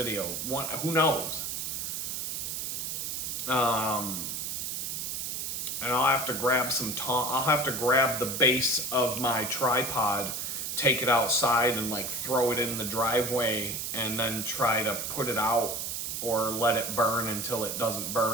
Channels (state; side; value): noise; right; hiss, 3 dB below the sound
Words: Who knows? And I'll have to grab I'll have to grab the base of my tripod, take it outside and like throw it in the driveway and then try to put it out or let it burn until it doesn't